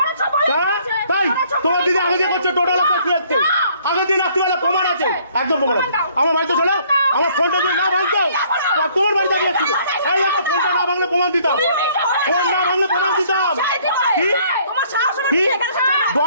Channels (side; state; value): both; inverted; correlation -0.61